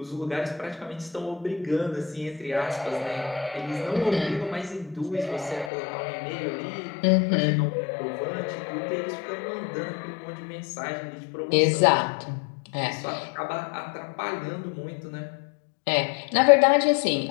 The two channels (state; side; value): drops out; right; at 5.7 s